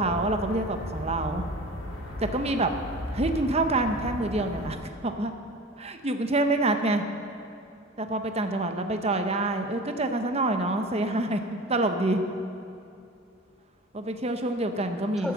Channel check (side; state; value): both; normal; correlation 0.37